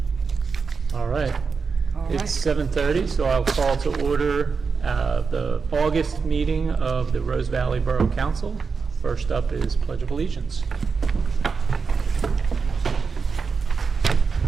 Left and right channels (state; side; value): quieter; left; 5.2 dB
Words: All right. All It's right. 7:30, so I'll call to order the August meeting of the Rose Valley Borough Council. First up is Pledge of Allegiance.